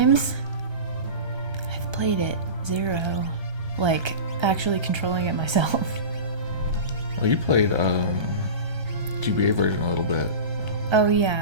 I've played it 0. Like, actually controlling it myself. Well, you played GBA version a little bit. Oh,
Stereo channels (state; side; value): late; left; 1.3 ms